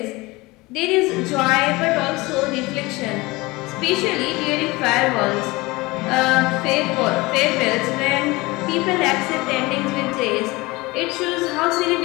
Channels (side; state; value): right; quieter; 22.3 dB